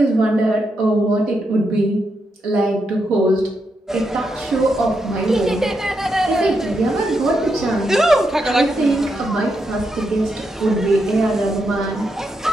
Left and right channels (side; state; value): both; normal; correlation 0.83